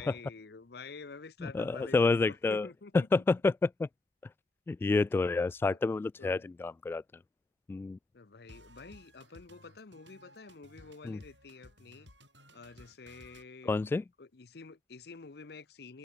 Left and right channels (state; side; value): quieter; right; 3.2 dB